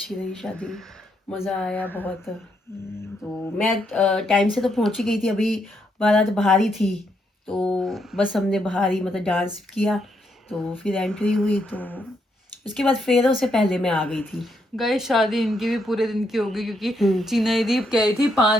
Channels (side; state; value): both; normal; correlation 0.77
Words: रही शादी, मज़ा आया बहुत। तो मैं टाइम से तो पहुंच ही गई थी, अभी बारात बाहर ही थी, तो बस हमने बाहर ही मतलब डांस किया, तो फिर एंट्री हुई, तो उसके बाद फेरों से पहले मैं आ गई थी। गाइस शादी इनकी भी पूरे दिन की होगी क्योंकि हम्म। चीना दीदी कह रही थी